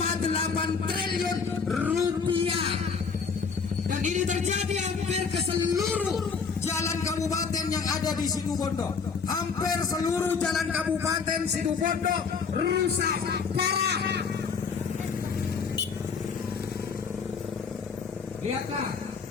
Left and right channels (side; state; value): right; quieter; 5.5 dB